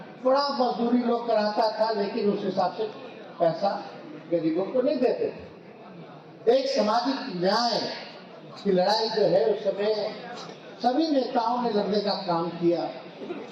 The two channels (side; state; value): both; identical; correlation 1.00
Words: बड़ा मजदूरी लोग कराता था, लेकिन उस हिसाब से पैसा गरीबों को नहीं देते थे। एक सामाजिक न्याय की लड़ाई जो है उस समय सभी नेताओं ने लड़ने का काम किया।